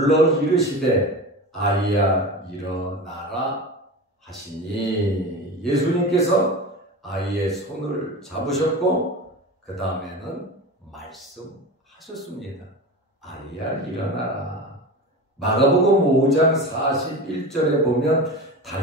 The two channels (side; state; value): both; normal; correlation 0.28